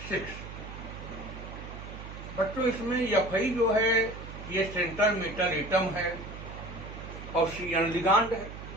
बच्चों, इसमें Fe जो है ये सेंट्रल मेटल एटम है और Cn लिगांड है।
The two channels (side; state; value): right; noise; hum, 11 dB below the sound